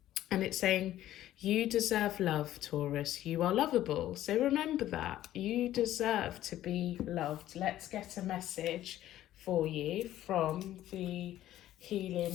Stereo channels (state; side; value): quieter; right; 13.3 dB